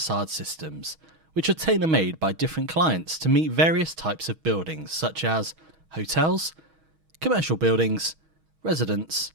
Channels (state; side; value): late; left; 6.3 ms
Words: systems, which are tailor-made by different clients to meet various types of buildings such as hotels, commercial buildings, residents,